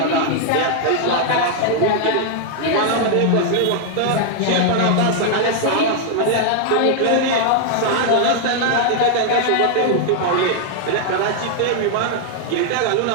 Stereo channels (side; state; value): both; different; correlation 0.00